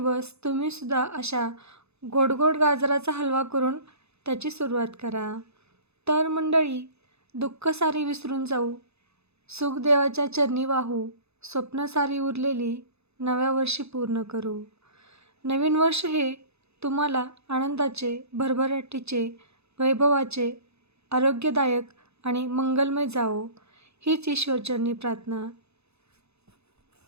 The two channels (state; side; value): late; left; 0.80 ms